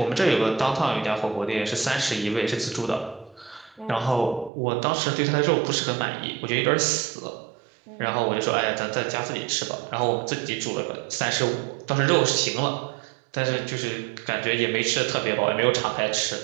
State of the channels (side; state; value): left; drops out; at 4.5 s